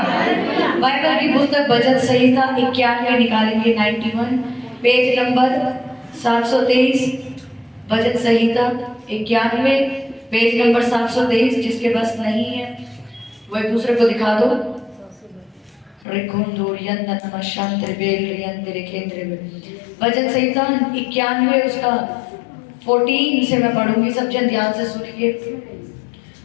बाइबल की पुस्तक भजन संहिता 91 निकालेंगे, 91 पेज नंबर 723। भजन संहिता 91 पेज नंबर 723। जिसके पास नहीं है वो एक दूसरे को दिखा दो। भजन संहिता 91 उसका 14 से मैं पढ़ूंगी, सब जन ध्यान से सुनिए।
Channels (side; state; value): right; drops out; at 16.1 s